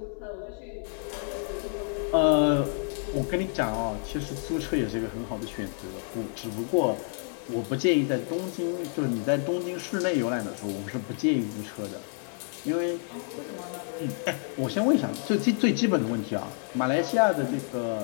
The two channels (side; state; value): right; silent; 55 dB below the other